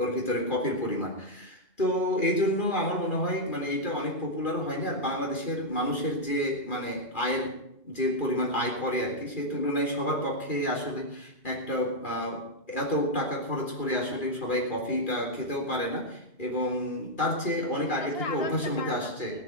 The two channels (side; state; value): right; late; 2.4 ms